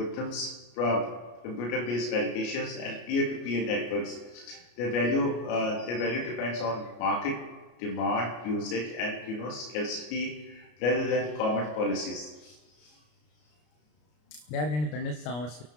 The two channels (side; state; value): right; late; 33 ms